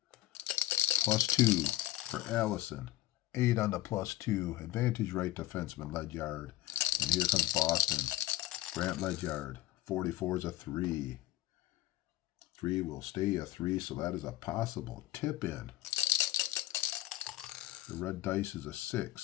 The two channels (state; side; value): quieter; right; 15.2 dB